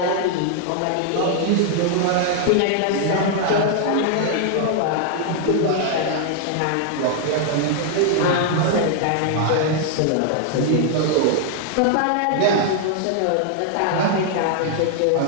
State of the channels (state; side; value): different; both; correlation 0.00